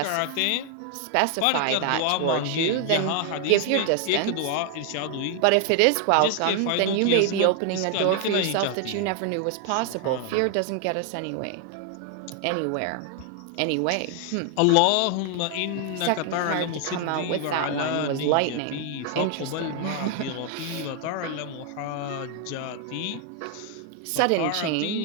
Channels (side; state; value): both; different; correlation 0.00